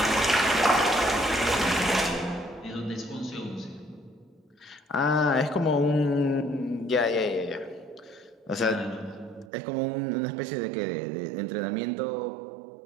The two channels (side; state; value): left; drops out; at 9.5 s